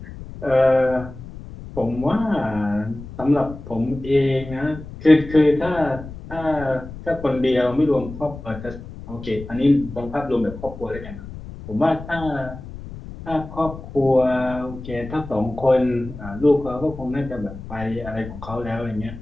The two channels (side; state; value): left; noise; rumble, 13 dB below the sound